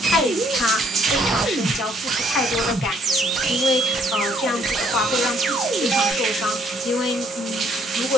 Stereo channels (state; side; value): normal; both; correlation 0.66